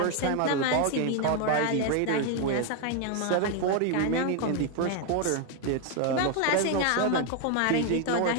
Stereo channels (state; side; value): different; both; correlation 0.01